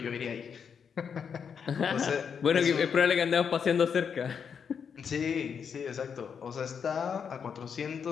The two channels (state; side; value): quieter; right; 6.9 dB